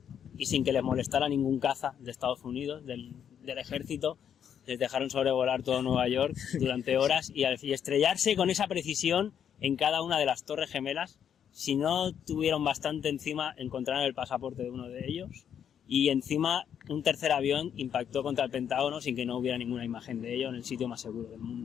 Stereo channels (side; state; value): right; quieter; 8.7 dB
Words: y sin que les molestara ningún caza de Estados Unidos, del ejército, les dejaron sobrevolar todo Nueva York durante horas y estrellarse con esa precisión en cada una de las torres gemelas. Si no tuvieron bastante encima, encontraron el pasaporte de uno de ellos y encima un tercer avión impactó contra el Pentágono sin que no hubiera ninguna imagen de ello en el sitio más seguro del